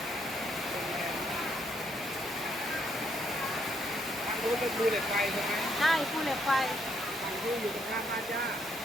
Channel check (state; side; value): normal; both; correlation 0.73